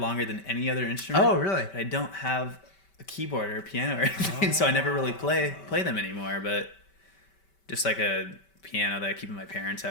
than any other instrument. Oh, really? But I don't have a keyboard or a piano or anything, so I never really play them anymore. But just like a piano that I keep in my parents'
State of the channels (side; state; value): right; late; 5.2 ms